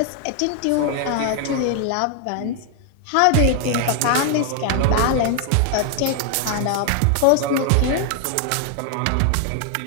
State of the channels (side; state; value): both; different; correlation 0.00